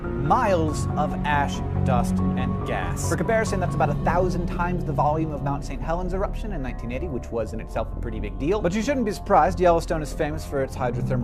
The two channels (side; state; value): both; identical; correlation 1.00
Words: of ash, dust, and gas. For comparison, that's about 1,000 times the volume of Mount St. Helens eruption in 1980, which was in itself a pretty big deal. But you shouldn't be surprised. Yellowstone is famous for its